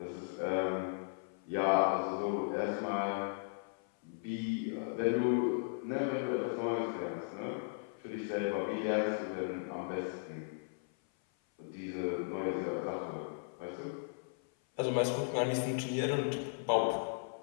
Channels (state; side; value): silent; right; 54 dB below the other